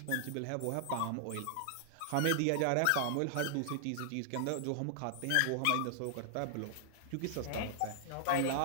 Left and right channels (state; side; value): different; both; correlation -0.01